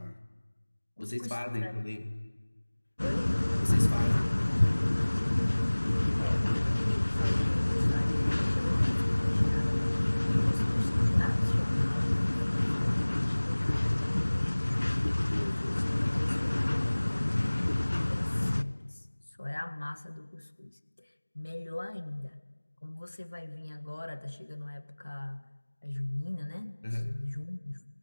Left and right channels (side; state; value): both; inverted; correlation -1.00